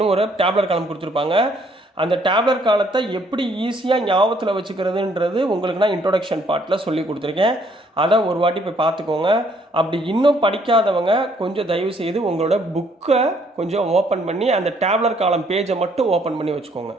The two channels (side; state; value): both; normal; correlation 0.66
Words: ஒரு டேப்லர் காலம் கொடுத்துருப்பாங்க. அந்த டேப்லர் காலத்தை எப்படி ஈஸியாக ஞாபகத்தில் வச்சுக்கிறதுன்றது உங்களுக்கு நான் இன்ட்ரோடக்ஷன் பார்ட்டில் சொல்லி கொடுத்துருக்கேன். அதை ஒரு வாட்டி போய் பார்த்துக்கோங்க. அப்படி இன்னும் படிக்காதவங்க கொஞ்சம் தயவு செய்து உங்களோட புக்கை கொஞ்சம் ஓப்பன் பண்ணி அந்த டேப்லர் காலம் பேஜை மட்டும் ஓப்பன் பண்ணி வச்சுக்கோங்க.